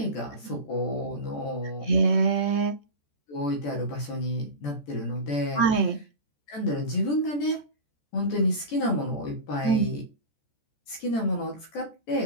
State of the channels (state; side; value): late; right; 14 ms